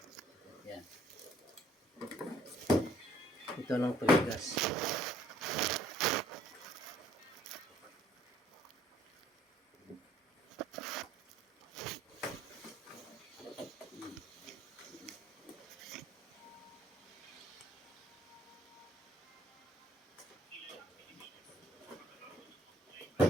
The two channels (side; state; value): both; normal; correlation 0.60